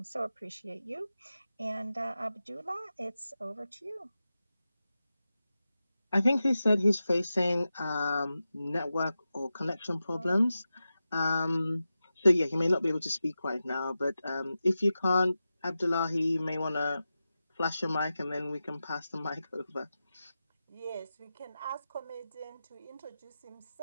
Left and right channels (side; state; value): both; inverted; correlation -0.92